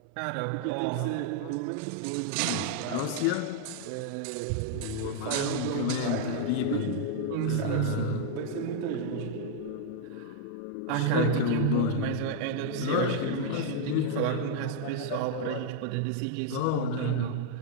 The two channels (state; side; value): different; both; correlation 0.00